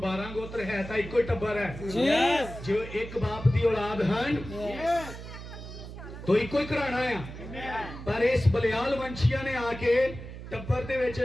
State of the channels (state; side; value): noise; right; hum, 11 dB below the sound